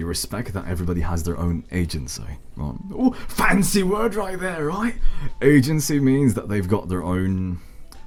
that everybody has their own agency, right? Oh, fancy word right there, right? Agency means that they've got their own,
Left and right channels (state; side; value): identical; both; correlation 1.00